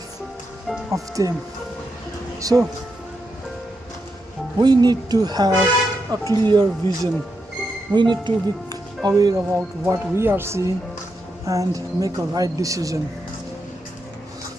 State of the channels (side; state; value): both; normal; correlation 0.85